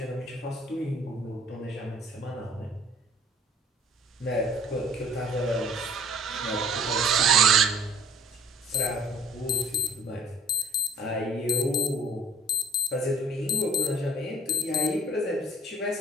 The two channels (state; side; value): normal; both; correlation 0.51